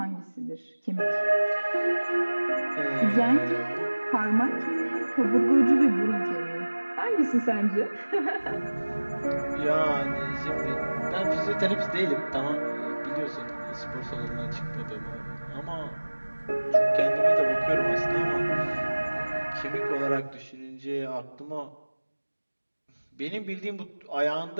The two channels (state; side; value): inverted; both; correlation -1.00